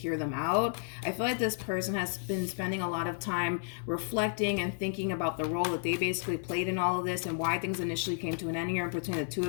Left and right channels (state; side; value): silent; right; 56 dB below the other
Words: them out. I feel like this person has been spending a lot of time reflecting and thinking about the role that they basically played in all of this and why things initially came to an end here between the two